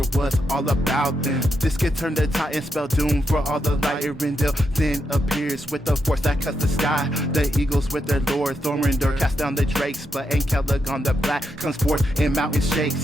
was all about them. This could turn the tide and spell doom for all the light. Aredehl then appears with the force that cuts the sky. The eagles with their lord Thorindor cast down the drakes, but Celegon the Black comes forth and mountains shake.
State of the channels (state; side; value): normal; both; correlation 0.83